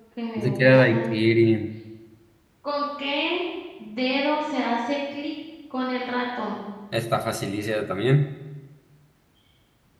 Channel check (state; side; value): identical; both; correlation 1.00